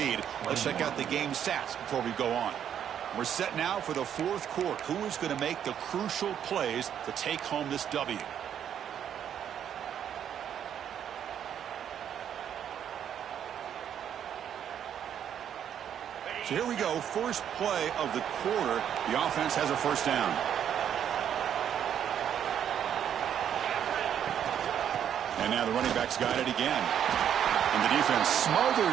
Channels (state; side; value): quieter; left; 9.3 dB